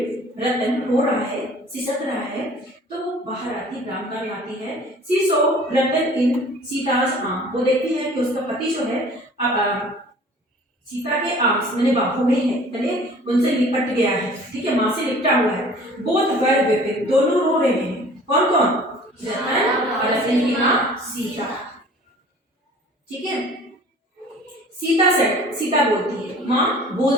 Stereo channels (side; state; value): both; normal; correlation 0.48